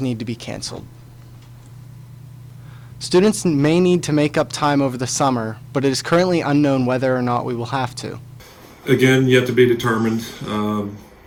to be canceled. Students may need to make up time over the summer, but it is currently unknown whether or not we will have to. Again, yet to be determined.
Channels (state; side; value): identical; both; correlation 1.00